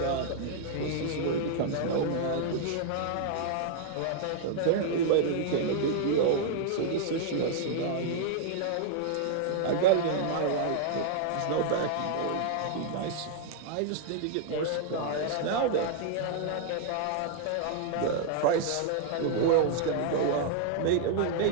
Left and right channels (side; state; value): both; different; correlation 0.00